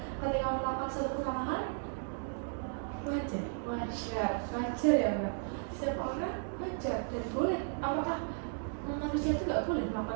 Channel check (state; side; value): silent; left; 55 dB below the other